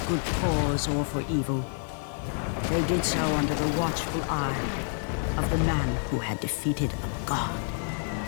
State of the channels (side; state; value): right; silent; 59 dB below the other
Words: good cause or for evil, they did so under the watchful eye of the man who had defeated a god.